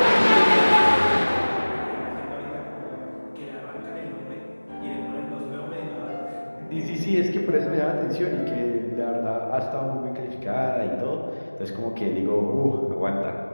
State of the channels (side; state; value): both; inverted; correlation -1.00